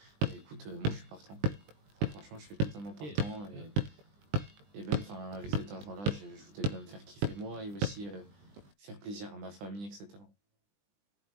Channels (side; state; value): left; late; 20 ms